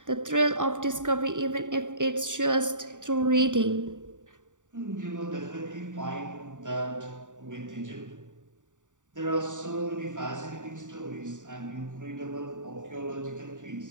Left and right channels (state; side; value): late; left; 0.86 ms